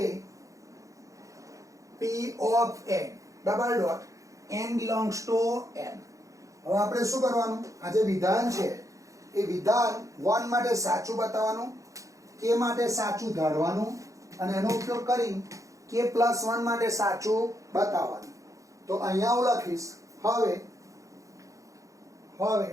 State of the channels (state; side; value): late; left; 0.16 ms